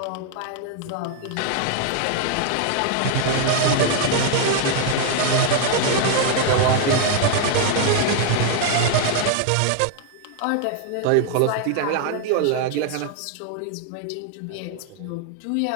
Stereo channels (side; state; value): both; different; correlation 0.00